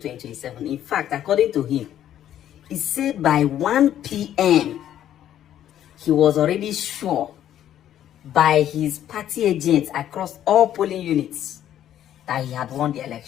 In fact, according to him, he said by 1 p.m., he was already sure by his party agents across all polling units that he had won the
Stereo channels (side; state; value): right; quieter; 11.2 dB